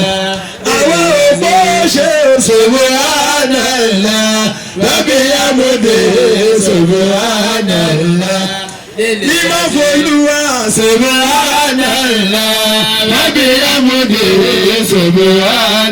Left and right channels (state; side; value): identical; both; correlation 1.00